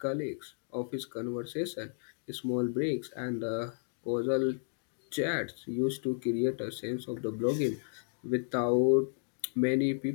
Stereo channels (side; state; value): right; silent; digital silence